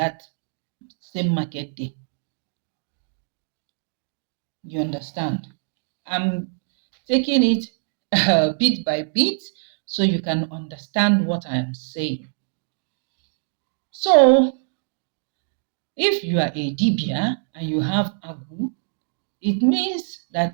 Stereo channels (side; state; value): left; silent; digital silence